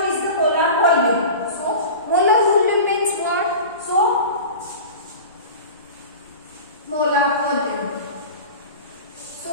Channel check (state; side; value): inverted; both; correlation -0.33